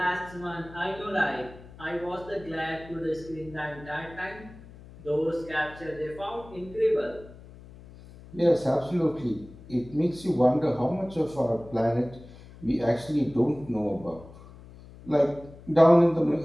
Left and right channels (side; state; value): left; noise; hum, 19 dB below the sound